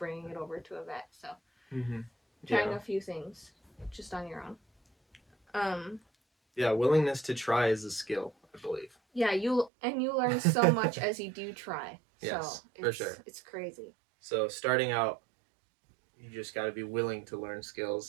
it over to a vet. So trying a few things just on your own. Yeah, willingness to try is a skill, I believe. Yeah, you learn so much as you do try. Yes, so for sure. It's crazy. So starting out, you just got to be willing to learn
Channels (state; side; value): drops out; left; at 9.7 s